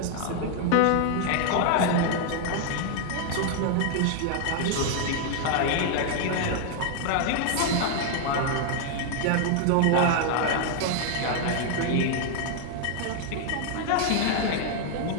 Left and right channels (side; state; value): both; different; correlation 0.00